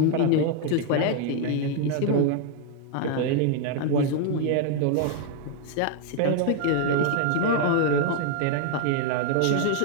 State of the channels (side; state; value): both; different; correlation 0.00